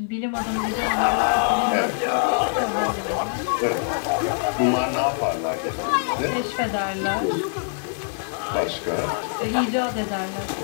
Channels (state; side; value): silent; right; digital silence